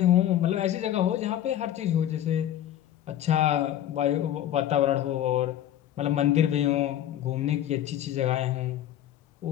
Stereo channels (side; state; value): right; quieter; 11.7 dB